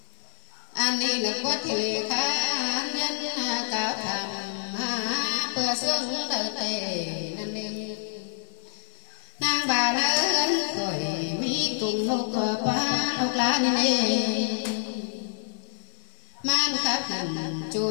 anh đi là có thể khá nhân cao thầm bữa xuân đời tề nên đi nàng bà lớn khỏi mi cùng lúc ba lúc lá nên man khắp hẳn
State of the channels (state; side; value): silent; right; digital silence